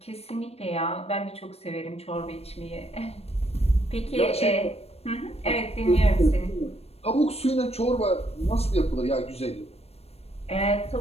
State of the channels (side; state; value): right; late; 0.30 ms